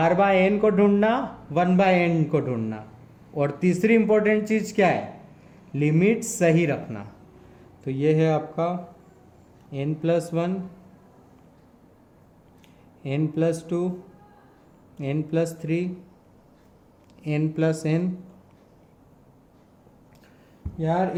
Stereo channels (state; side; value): identical; both; correlation 1.00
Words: बाय एन को ढूंढना, 1 बाय एन को ढूंढना, और तीसरी इंपॉर्टेंट चीज क्या है? लिमिट सही रखना। तो ये है आपका n plus 1, n plus 2, n plus 3, n plus n। यार